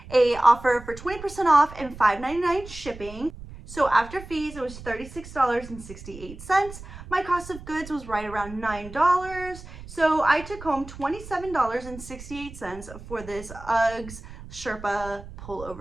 a offer for 20% off and $5.99 shipping. So after fees, it was $36.68. My cost of goods was right around $9. So I took home $27.68 for this Uggs Sherpa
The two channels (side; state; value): right; noise; rumble, 15 dB below the sound